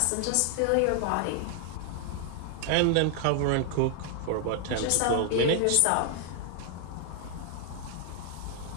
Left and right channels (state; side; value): different; both; correlation 0.00